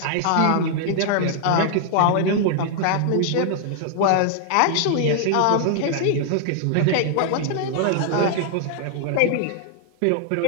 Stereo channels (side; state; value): both; different; correlation 0.00